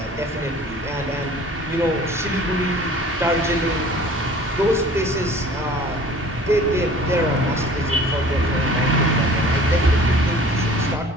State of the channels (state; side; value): normal; both; correlation 0.47